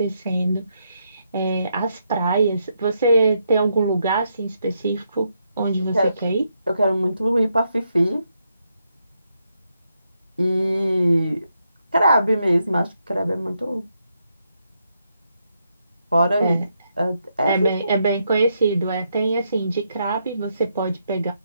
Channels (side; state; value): both; inverted; correlation -0.80